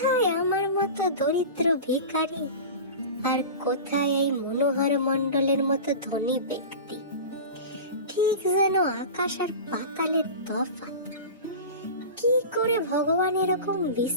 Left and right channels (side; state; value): both; inverted; correlation -0.31